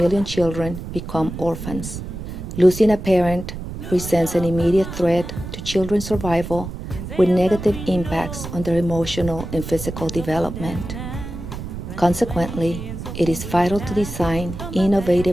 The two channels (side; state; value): right; noise; rumble, 8 dB below the sound